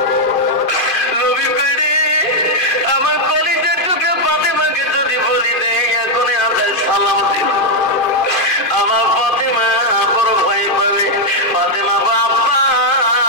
নবী কইরে আমার কলিজা টুকে ফাতেমাকে যদি বলি দেয় এখনই আমরা সালাম দিন। আমার ফাতেমা বড় ভয়ে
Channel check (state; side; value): late; right; 2.0 ms